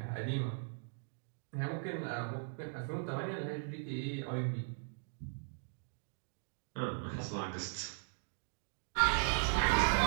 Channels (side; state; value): left; silent; digital silence